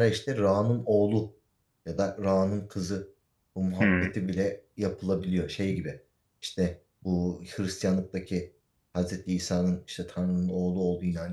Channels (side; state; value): both; identical; correlation 1.00